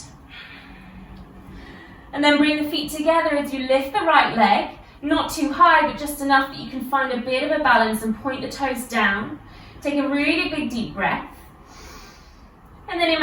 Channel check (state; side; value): identical; both; correlation 1.00